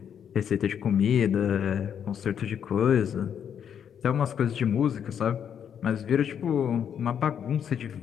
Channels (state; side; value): quieter; right; 8.4 dB